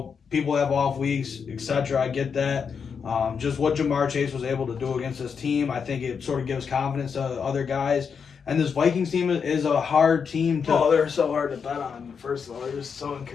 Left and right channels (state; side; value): quieter; right; 6.3 dB